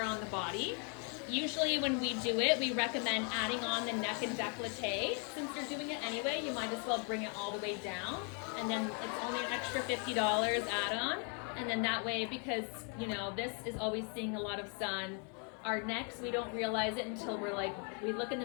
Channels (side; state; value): right; quieter; 39.1 dB